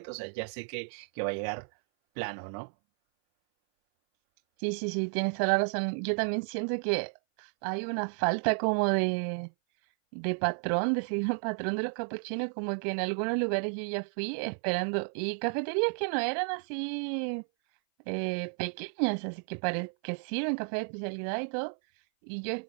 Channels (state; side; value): silent; left; 56 dB below the other